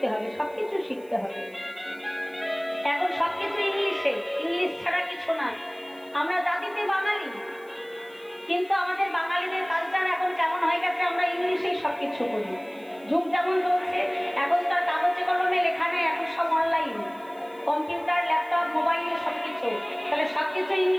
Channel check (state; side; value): noise; right; hiss, 28 dB below the sound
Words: হবে, সবকিছু শিখতে হবে। এখন সবকিছু ইংলিশে, ইংলিশ ছাড়া কিছু না। আমরা জাতিতে বাঙালি, কিন্তু আমাদের বাঙালিদের কালচার এখন কেমন হয়ে গেছে, আমরা ইংলিশেই সবকিছু করি। যুগ যেমন চলছে, এখন তার কাগজে কলমে লেখা নেই, এখন সব অনলাইন, কম্পিউটার, ল্যাপটপ, মোবাইল, সবকিছু। তাহলে সবকিছু